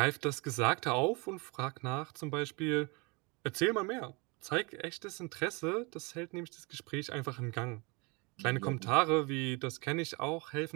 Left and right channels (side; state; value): left; quieter; 28.7 dB